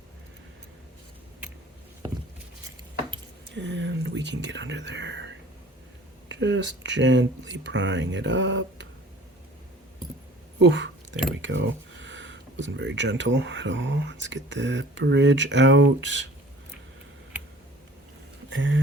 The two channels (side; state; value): both; normal; correlation 0.48